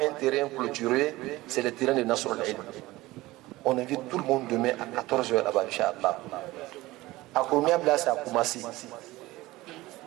un terrain clôturé, c'est le terrain de Nasr al-Ilm. On invite tout le monde demain à 14h là-bas, Inch'Allah. À Kouroumiabla, c'est à Koumassi.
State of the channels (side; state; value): left; quieter; 18.8 dB